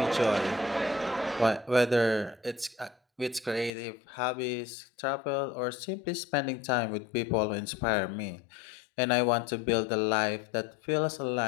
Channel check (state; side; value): drops out; right; at 3.7 s